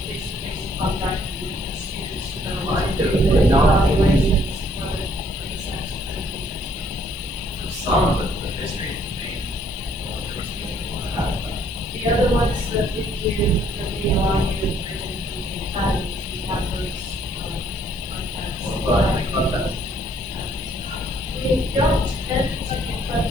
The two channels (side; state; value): left; noise; hiss, 26 dB below the sound